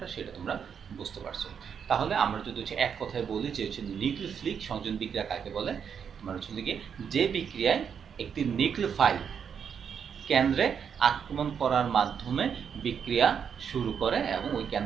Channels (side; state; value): left; quieter; 7.3 dB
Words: সেটা তোমরা বুঝতে পারছো। তাহলে আমরা যদি হচ্ছে এক কথায় বলি যে হচ্ছে নিউক্লিওফিলিক সংযোজন বিক্রিয়া কাকে বলে, তোমার হচ্ছে গিয়ে যে বিক্রিয়ায় একটি নিউক্লিওফাইল কেন্দ্রে আক্রমণ করার মাধ্যমে বিক্রিয়া শুরু করে এবং ওই